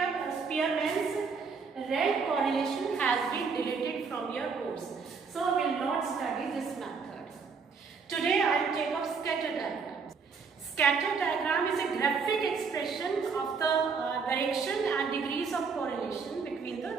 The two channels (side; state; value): left; quieter; 5.3 dB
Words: Spearman's rank correlation, has been deleted from your course. So we will not study this method. Today I will take up scatter diagram. Scatter diagram is a graphic expression of the direction and degrees of correlation between